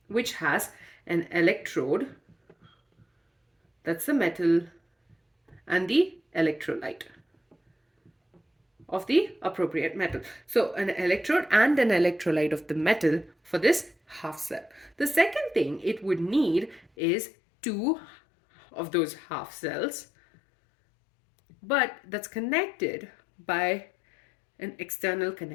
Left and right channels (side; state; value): right; drops out; at 16.9 s